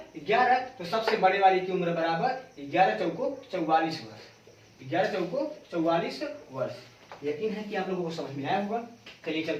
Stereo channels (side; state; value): both; identical; correlation 1.00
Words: 11। तो सबसे बड़े वाली की उम्र बराबर 11 चौको 44 वर्ष, 11 चौको 44 वर्ष। यकीन है कि आप लोगों को समझ में आया होगा। चलिए